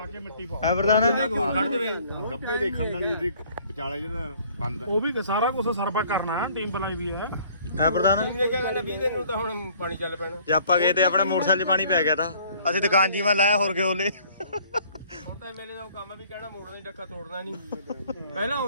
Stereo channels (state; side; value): inverted; both; correlation -0.57